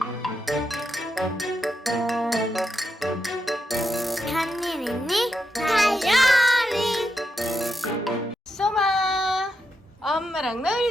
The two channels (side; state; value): both; normal; correlation 0.85